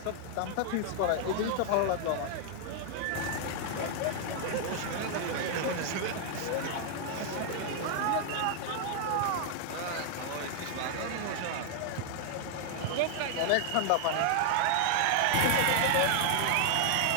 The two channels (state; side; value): different; both; correlation -0.01